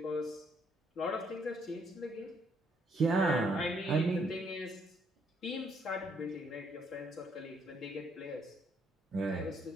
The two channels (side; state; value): both; normal; correlation 0.70